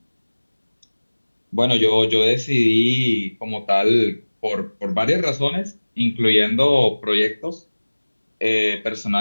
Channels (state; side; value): inverted; both; correlation -1.00